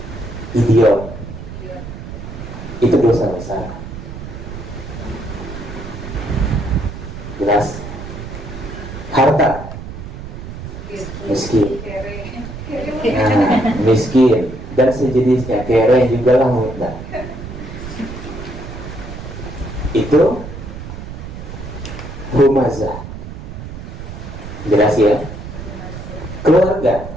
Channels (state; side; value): noise; right; rumble, 10 dB below the sound